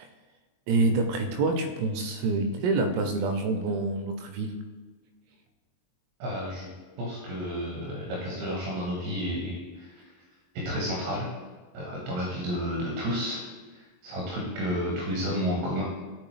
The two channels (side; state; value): left; late; 22 ms